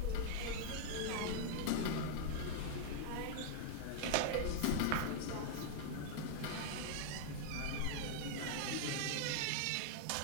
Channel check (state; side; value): different; both; correlation -0.01